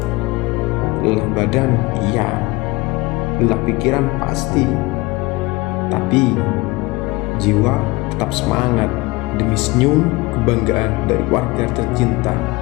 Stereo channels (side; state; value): right; quieter; 22.4 dB